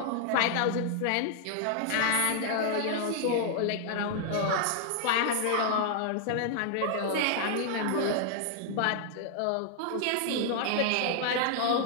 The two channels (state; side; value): different; both; correlation -0.01